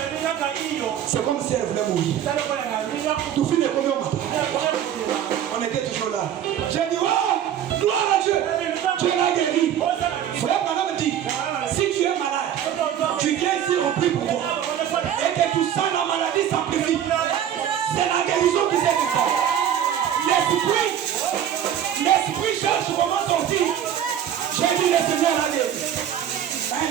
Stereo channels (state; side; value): quieter; left; 10.0 dB